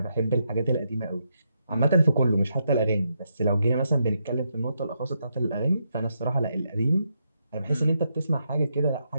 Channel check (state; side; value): inverted; both; correlation -0.81